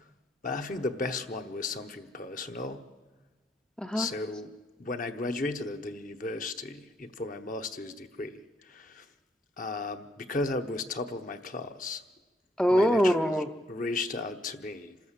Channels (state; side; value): normal; both; correlation 0.72